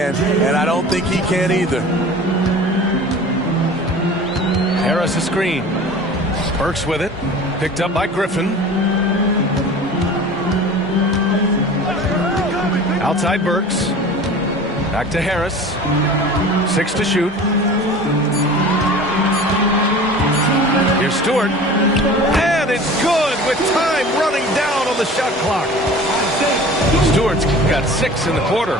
and I don't think he can either. Harris a screen. Burks with it. Picked up by Griffin. Outside Burks. Back to Harris. 6 to shoot. Here's Stewart. And it's good with time running down on the shot clock. Stewart's got 6 in the quarter.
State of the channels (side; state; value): both; normal; correlation 0.40